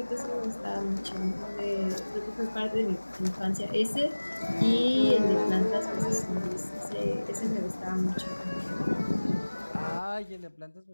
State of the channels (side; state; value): both; inverted; correlation -1.00